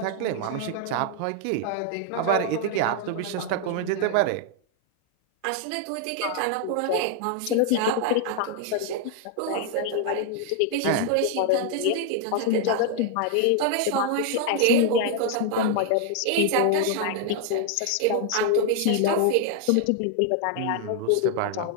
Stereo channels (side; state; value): both; different; correlation 0.00